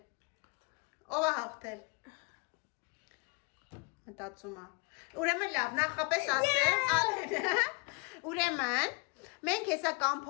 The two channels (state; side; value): quieter; right; 30.7 dB